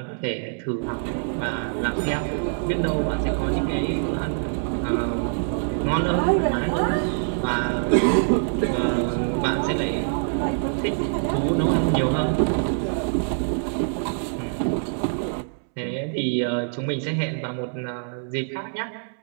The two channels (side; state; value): left; silent; 62 dB below the other